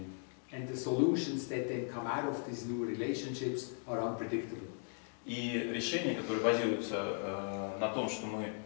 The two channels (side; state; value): right; silent; 53 dB below the other